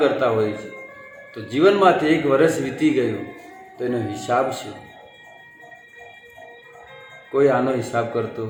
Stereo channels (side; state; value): both; identical; correlation 1.00